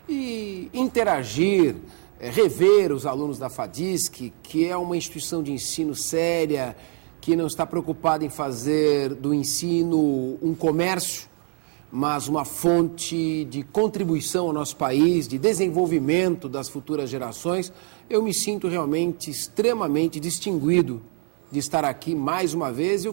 e interagir, rever os alunos da FADISC, que é uma instituição de ensino séria, que não está preocupada em fazer do ensino um comércio, mas uma fonte de contribuição ao nosso país, de desenvolvimento das futuras gerações. Eu me sinto realmente extremamente distinguido de estar aqui mais uma vez. Eu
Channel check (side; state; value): left; quieter; 39.4 dB